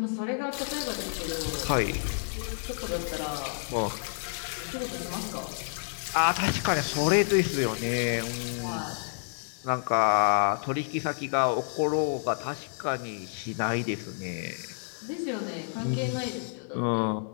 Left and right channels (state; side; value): silent; right; digital silence